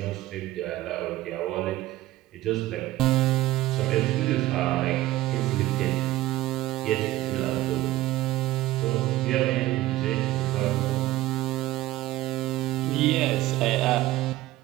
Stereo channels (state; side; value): quieter; left; 16.1 dB